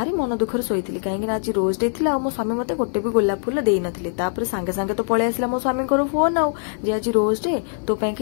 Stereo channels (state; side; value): silent; right; digital silence